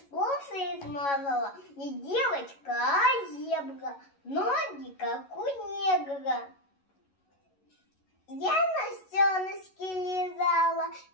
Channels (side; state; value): right; late; 11 ms